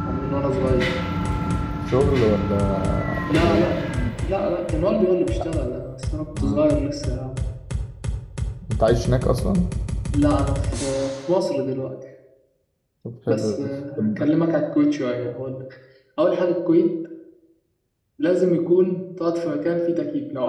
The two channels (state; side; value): identical; both; correlation 1.00